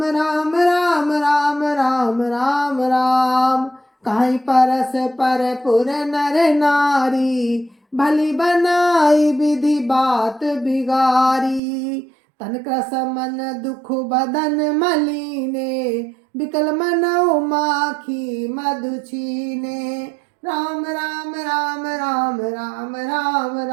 राम राम राम राम राम राम। कहीं परस पर पुर नर नारी, भली बनाई विधि बात बिगारी। तन क्रस मन दुख बदन मलीने, बिकल मनौ माखी मधु छीने। राम राम राम राम राम राम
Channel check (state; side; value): drops out; left; at 11.6 s